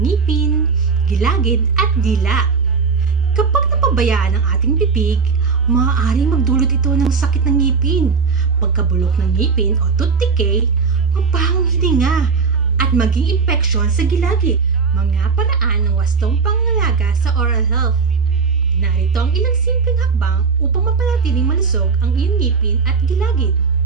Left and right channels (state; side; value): quieter; left; 5.2 dB